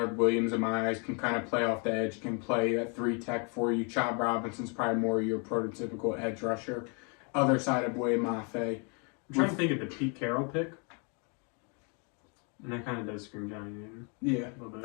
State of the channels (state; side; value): quieter; right; 35.8 dB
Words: Williams in my eyes, can kind of play off the edge, can play at 3-tech for you. Chop Robinson's probably more your prototypical edge rusher. Other side of Boye Mafe. I'm trying to think of the Pete Carroll pick. And that kind of does scream Johnny Newton. Yeah,